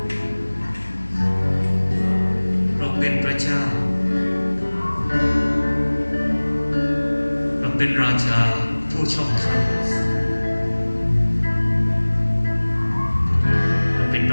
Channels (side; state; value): both; inverted; correlation -1.00